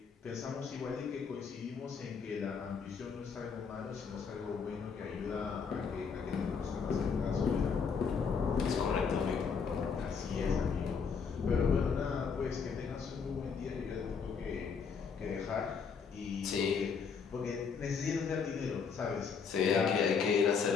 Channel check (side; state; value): right; quieter; 5.9 dB